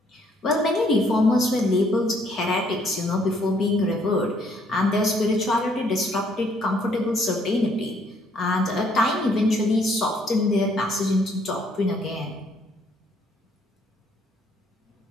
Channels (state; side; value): normal; both; correlation 0.67